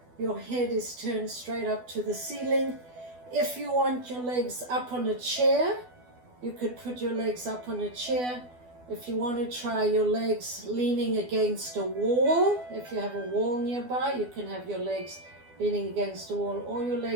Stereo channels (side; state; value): left; late; 12 ms